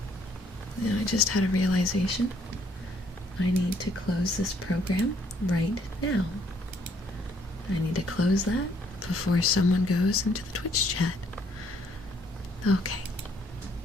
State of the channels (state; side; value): normal; both; correlation 0.66